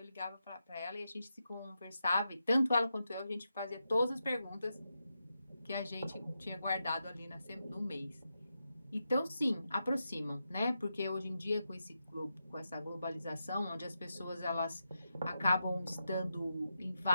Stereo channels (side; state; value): both; inverted; correlation -0.87